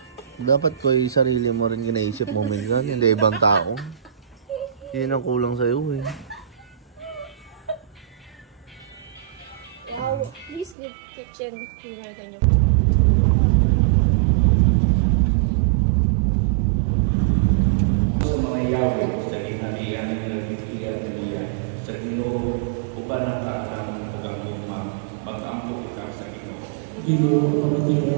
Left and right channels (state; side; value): drops out; left; at 10.8 s